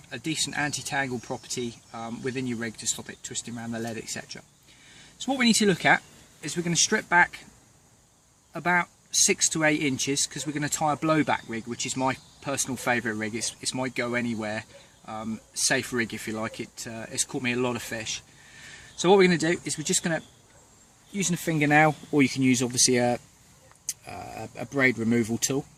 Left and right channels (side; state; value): both; identical; correlation 1.00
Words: a decent anti-tangle property within your rig to stop it twisting around the lead, etc. So what we need to look at is we're going to strip back about 6 to 8 inches because we're going to tie a blowback rig, which is my personal favourite rig. It's my go anywhere safe rig, if you like. It's caught me a lot of fish. So what we're going to do is we're just going to, using a fingernail, or you can use obviously a braid removal tool,